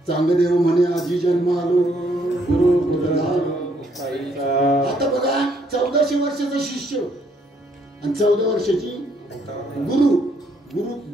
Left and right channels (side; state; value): both; normal; correlation 0.70